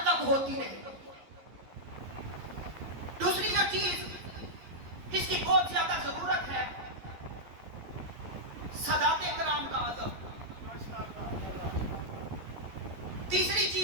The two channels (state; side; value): late; left; 11 ms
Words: تک ہوتی رہے. دوسری جو چیز جس کی بہت زیادہ ضرورت ہے سادات کرام کا ادب. تیسری